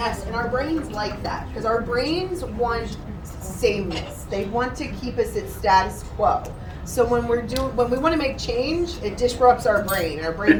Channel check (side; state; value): both; identical; correlation 1.00